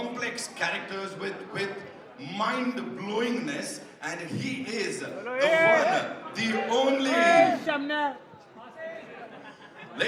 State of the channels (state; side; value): identical; both; correlation 1.00